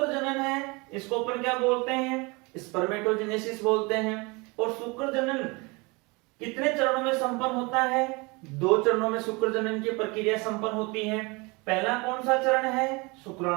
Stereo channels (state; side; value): quieter; left; 26.9 dB